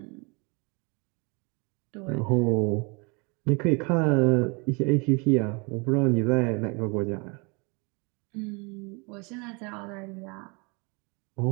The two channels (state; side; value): quieter; left; 30.8 dB